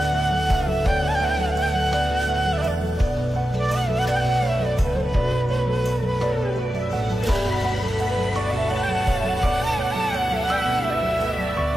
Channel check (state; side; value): normal; both; correlation 0.90